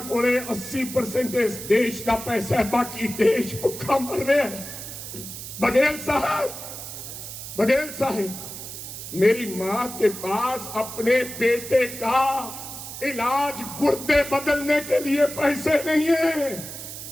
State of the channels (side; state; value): right; noise; hiss, 10 dB below the sound